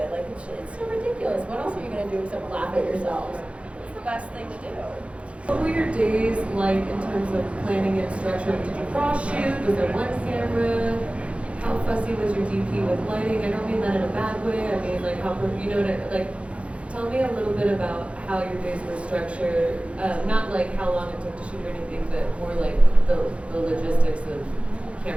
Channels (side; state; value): left; late; 0.061 ms